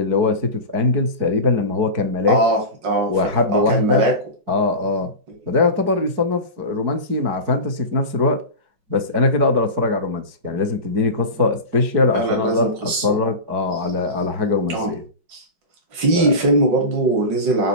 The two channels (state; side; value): late; left; 5.4 ms